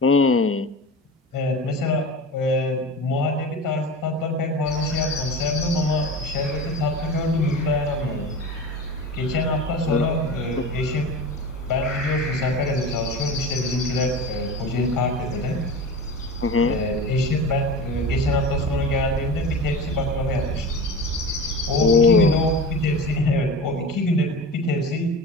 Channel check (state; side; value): normal; both; correlation 0.31